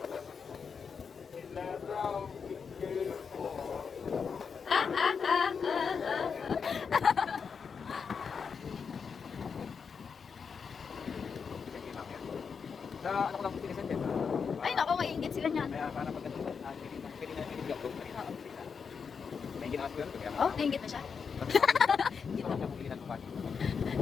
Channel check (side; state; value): right; quieter; 6.0 dB